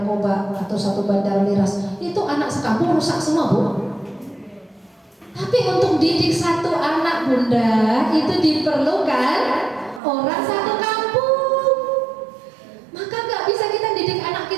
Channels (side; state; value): left; drops out; at 10.0 s